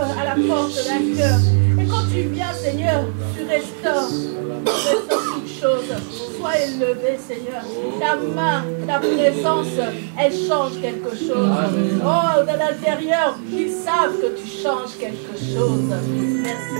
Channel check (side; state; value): left; silent; digital silence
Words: à la porte d'un cœur. Et quand tu viens, Seigneur, tu restaures. Tu restaures toutes choses. Sois élevé, Seigneur. Ta main, ta présence, elle change quelque chose. Oh, de l'intérieur, ils savent que tu changes quelque chose. Merci.